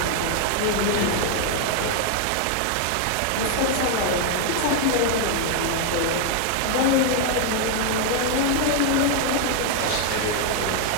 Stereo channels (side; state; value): both; different; correlation 0.00